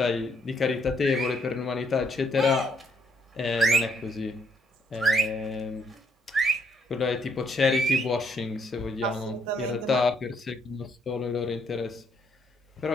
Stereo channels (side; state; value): both; normal; correlation 0.71